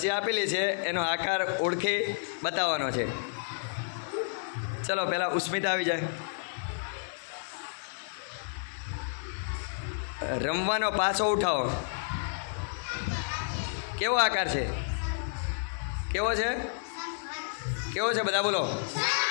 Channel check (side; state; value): right; silent; digital silence